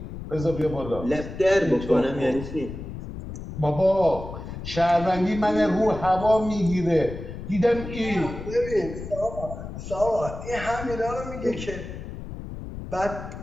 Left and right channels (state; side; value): noise; left; rumble, 10 dB below the sound